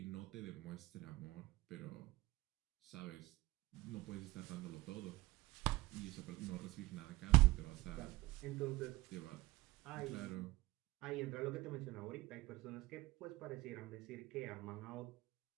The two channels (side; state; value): left; quieter; 19.9 dB